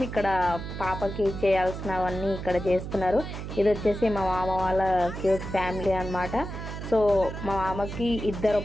ఇక్కడ పాపకి చేయాల్సినవన్నీ ఇక్కడ చేస్తున్నారు. ఇది వచ్చేసి మా మామ వాళ్ళ క్యూట్ ఫ్యామిలీ అనమాట. సో మా మామకి ఇద్దరు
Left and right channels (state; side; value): noise; right; hum, 7 dB below the sound